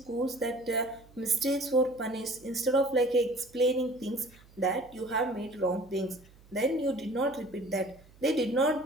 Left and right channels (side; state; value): right; noise; hum, 26 dB below the sound